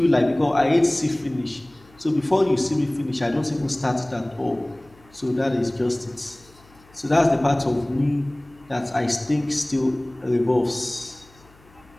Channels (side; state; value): left; noise; hum, 28 dB below the sound